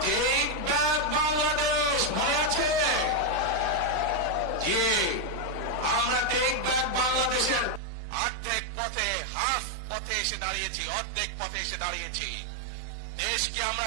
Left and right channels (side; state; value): left; drops out; at 7.8 s